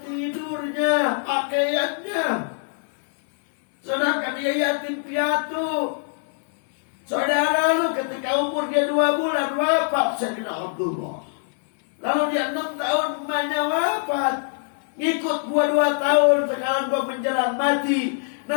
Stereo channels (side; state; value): right; silent; digital silence